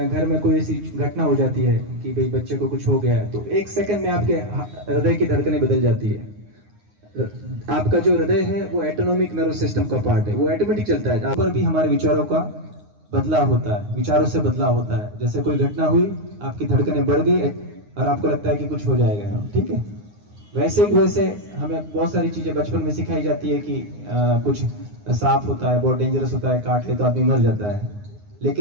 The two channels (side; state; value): left; late; 9.6 ms